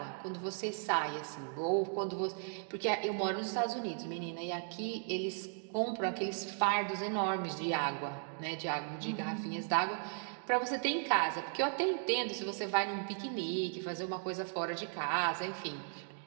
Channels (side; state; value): left; silent; 53 dB below the other